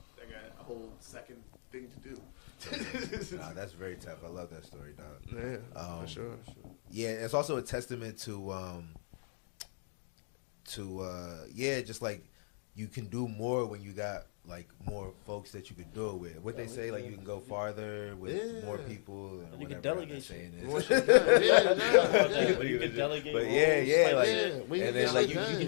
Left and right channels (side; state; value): right; silent; digital silence